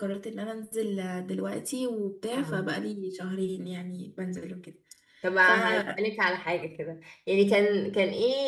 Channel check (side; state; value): both; identical; correlation 1.00